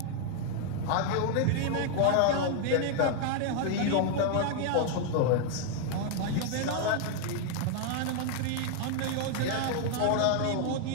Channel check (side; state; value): both; different; correlation 0.00